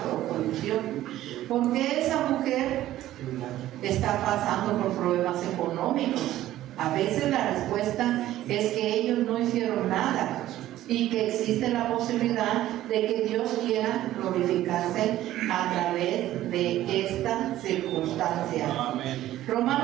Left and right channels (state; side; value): quieter; left; 14.0 dB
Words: o condición? ¿Por qué esa mujer está pasando por problemas económicos? A veces la respuesta es que ellos no hicieron nada, y que existe la posibilidad de que Dios quiera glorificarse a través de esta circunstancia. Amén.